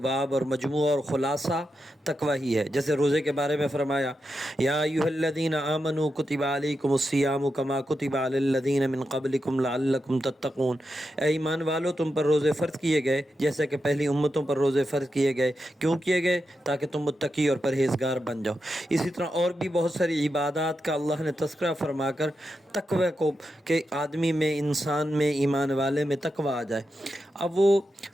اور مجموعہ اور خلاصہ تقوی ہی ہے۔ جیسے روزے کے بارے میں فرمایا، یا ایھا الذین آمنوا کتب علیکم الصیام کما کتب علی الذین من قبلکم لعلکم تتقون۔ اے ایمان والو، تم پر روزے فرض کیے گئے جیسے کہ پہلی امتوں پر روزے فرض کیے گئے۔ کیوں کیے گئے؟ تاکہ تم متقی اور پرہیزگار بن جاؤ۔ اسی طرح اور بھی بہت ساری عبادات کا اللہ نے تذکرہ فرما کر تقوی کو، کہ آدمی میں، انسان میں، ایمان والے میں تقوی آ جائے۔ اب وہ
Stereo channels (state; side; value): normal; both; correlation 0.87